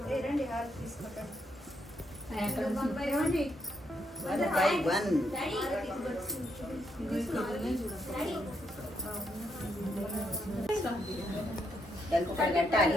రండి హారతి తీసుకోండి One by one. దానికి ఒకటి కట్టాలి.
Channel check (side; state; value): both; normal; correlation 0.77